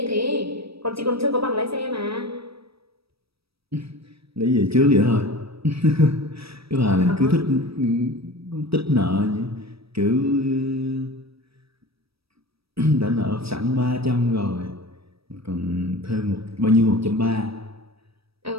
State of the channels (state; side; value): late; left; 0.77 ms